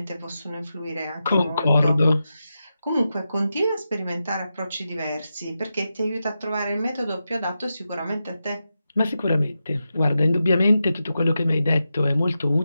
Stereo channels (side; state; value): both; inverted; correlation -0.89